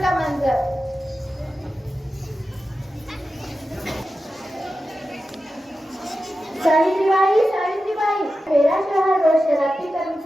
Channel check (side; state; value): both; normal; correlation 0.92